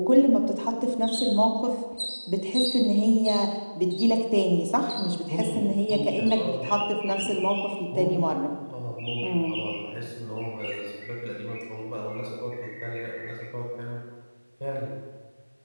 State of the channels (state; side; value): inverted; both; correlation -1.00